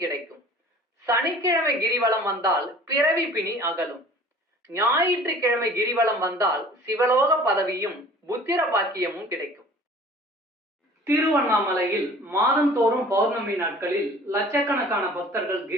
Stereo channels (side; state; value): both; normal; correlation 0.47